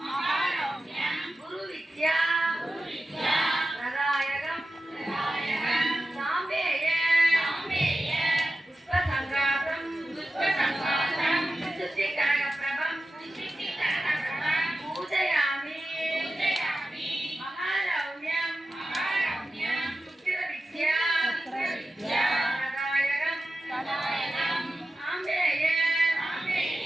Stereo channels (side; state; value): both; normal; correlation 0.93